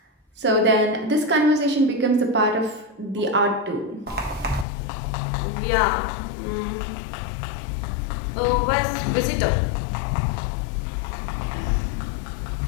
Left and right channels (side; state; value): right; drops out; at 4.7 s